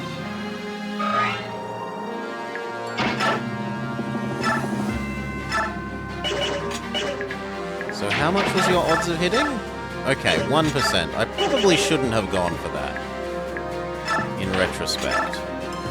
So how much was your odds of hitting? Okay, 1%. I probably shouldn't have gone for that, in retrospect.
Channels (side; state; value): both; identical; correlation 1.00